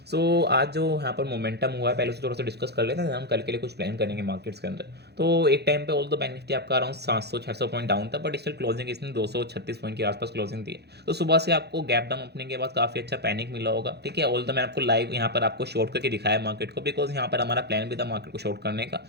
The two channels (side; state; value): left; late; 0.48 ms